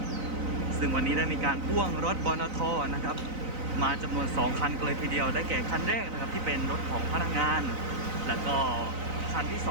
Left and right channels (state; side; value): late; left; 3.9 ms